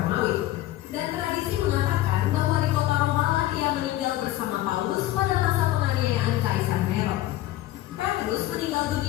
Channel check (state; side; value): quieter; right; 15.1 dB